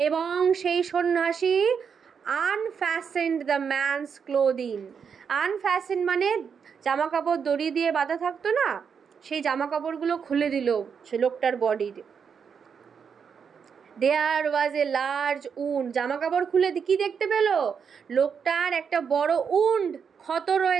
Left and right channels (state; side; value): quieter; left; 6.6 dB